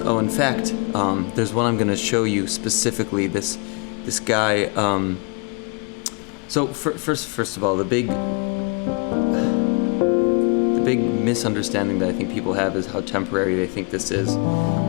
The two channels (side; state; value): right; quieter; 34.2 dB